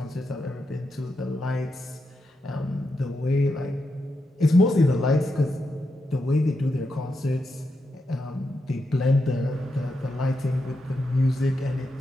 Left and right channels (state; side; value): normal; both; correlation 0.85